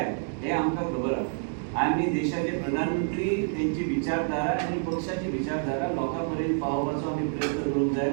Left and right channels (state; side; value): silent; left; digital silence